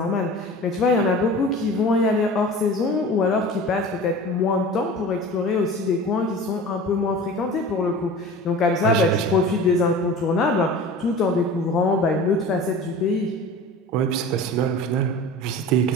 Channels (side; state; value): both; normal; correlation 0.37